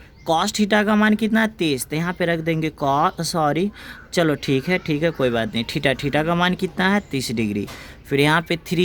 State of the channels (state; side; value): identical; both; correlation 1.00